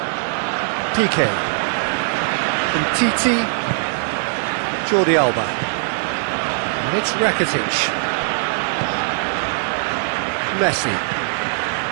PK. From Titi. Jordi Alba. And it's Rakitic. Messi.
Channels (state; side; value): silent; left; digital silence